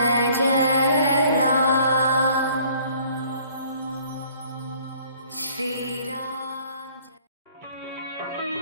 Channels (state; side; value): inverted; both; correlation -0.56